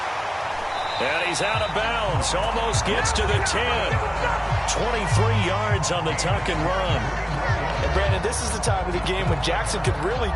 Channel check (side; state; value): both; identical; correlation 1.00